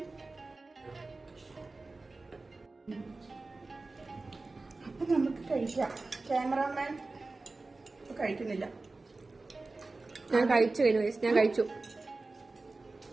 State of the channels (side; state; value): left; quieter; 3.4 dB